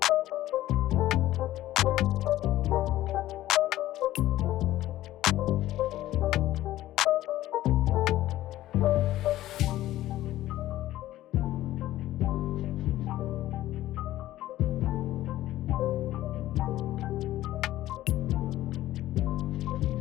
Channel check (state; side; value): quieter; right; 14.7 dB